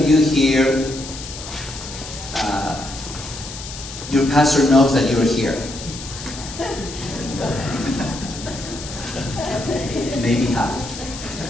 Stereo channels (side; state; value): left; noise; hiss, 11 dB below the sound